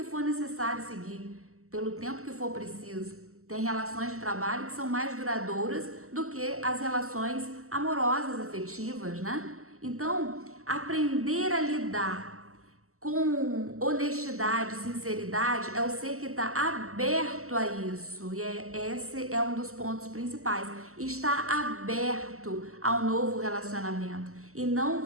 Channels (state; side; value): late; left; 0.63 ms